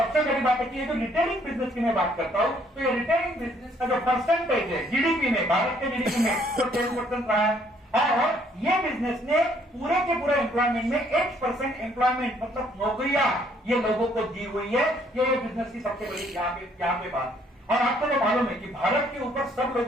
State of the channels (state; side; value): normal; both; correlation 0.65